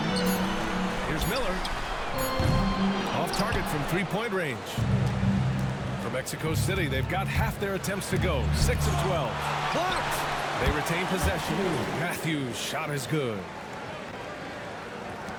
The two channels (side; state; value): both; identical; correlation 1.00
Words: Here's Miller. Off target from three-point range. For Mexico City, they've got half their attempts to go. 6 of 12. Blocked! They retain possession. Matthews' shot is good.